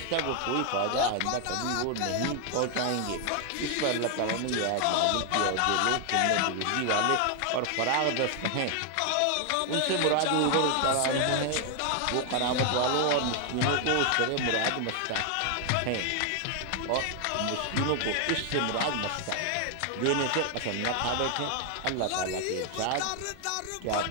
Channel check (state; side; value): different; both; correlation 0.00